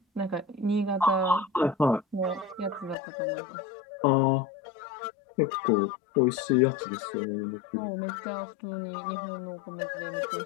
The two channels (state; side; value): drops out; right; at 3.0 s